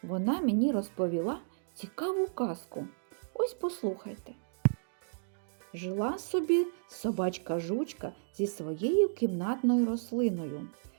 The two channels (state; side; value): silent; left; digital silence